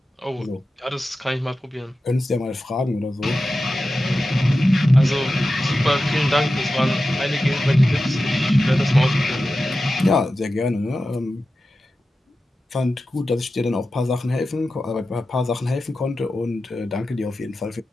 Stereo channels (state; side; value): normal; both; correlation 0.93